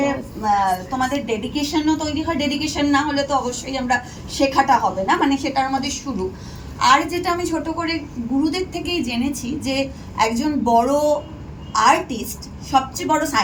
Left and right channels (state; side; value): identical; both; correlation 1.00